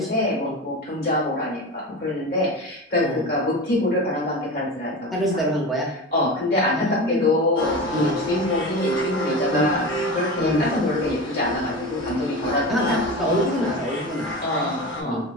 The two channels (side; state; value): both; normal; correlation 0.27